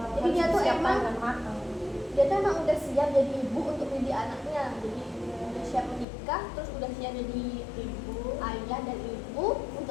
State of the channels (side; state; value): right; drops out; at 6.1 s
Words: Jadi dia tuh Siapkan emang dengan matang. dia tuh emang udah siap jadi ibu untuk mendidik anaknya, jadi udah siap menikah, terus udah siap jadi ibu, ayah dan ibu